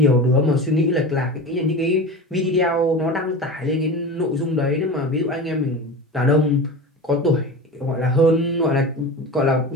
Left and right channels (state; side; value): normal; both; correlation 0.30